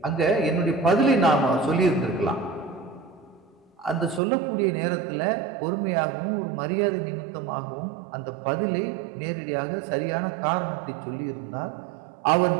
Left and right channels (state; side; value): drops out; left; at 4.2 s